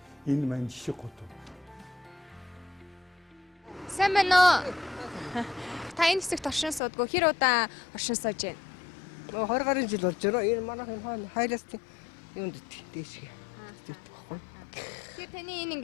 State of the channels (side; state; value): right; drops out; at 6.8 s